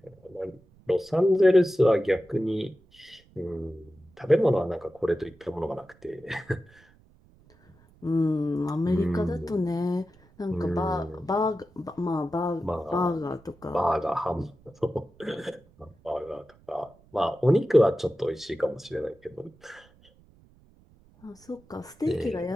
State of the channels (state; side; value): noise; right; rumble, 29 dB below the sound